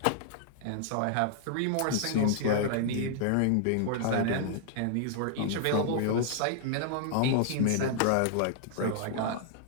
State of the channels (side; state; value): both; different; correlation -0.01